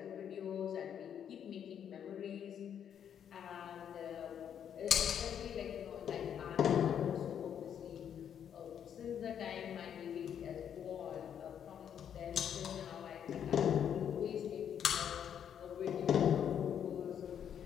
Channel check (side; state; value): right; quieter; 8.8 dB